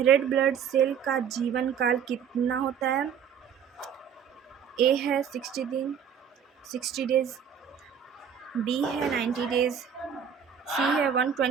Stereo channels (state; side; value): quieter; left; 7.9 dB